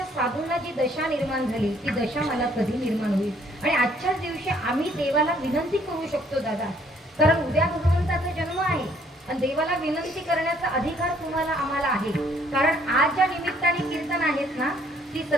साधूंना जी दशा निर्माण झाली ती दशा मला कधी निर्माण होईल? आणि आजच्याच दिवशी आम्ही देवाला विनंती करू शकतो दादा, कारण उद्या भगवंताचा जन्म आहे आणि देवाला विनंती करण्याचा अधिकार तुम्हाला आम्हाला आहे. कारण आज ज्या निमित्ताने कीर्तन आहेत ना, ती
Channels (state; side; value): normal; both; correlation 0.63